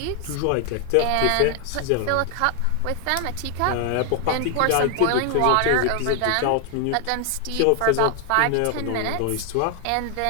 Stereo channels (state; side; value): different; both; correlation 0.00